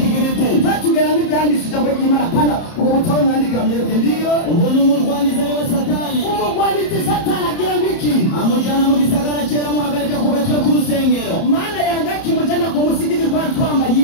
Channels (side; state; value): right; late; 30 ms